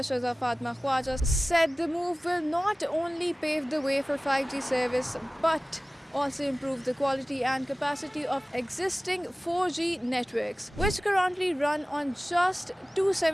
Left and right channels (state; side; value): normal; both; correlation 0.97